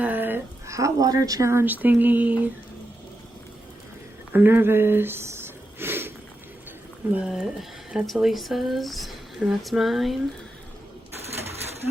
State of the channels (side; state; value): both; normal; correlation 0.87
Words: hot water challenge thingy. I'm nervous, but that's Elisa's and that's mine.